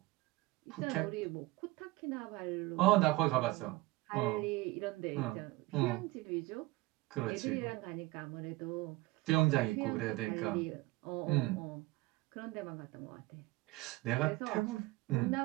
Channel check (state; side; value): quieter; left; 21.0 dB